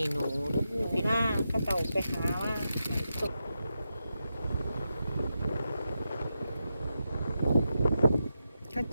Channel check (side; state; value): both; inverted; correlation -0.87